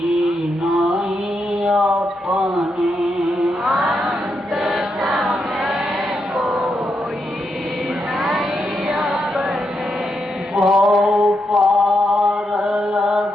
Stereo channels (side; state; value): both; normal; correlation 0.82